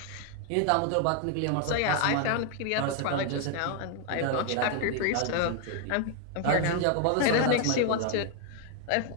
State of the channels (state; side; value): different; both; correlation 0.01